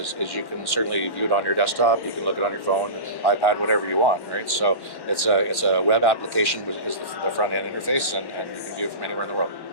you can certainly view it on your desktop. You can look it on your phone, iPad, whatever you want, right? So it's a web application which is the front end interface, and you can view it from anywhere in the world.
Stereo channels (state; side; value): late; right; 1.1 ms